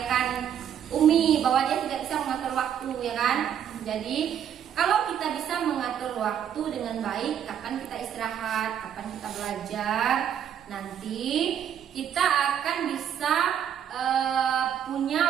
Umi bahwa dia tidak bisa mengatur waktu, ya kan? Jadi kalau kita bisa mengatur waktu dengan baik, kapan kita istirahat, kapan kita belajar, nanti kita akan bisa punya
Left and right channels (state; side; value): quieter; left; 9.2 dB